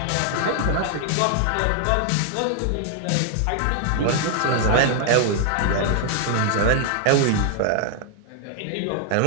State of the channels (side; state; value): both; different; correlation 0.00